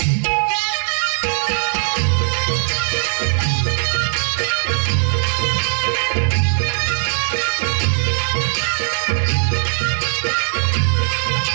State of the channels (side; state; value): left; silent; digital silence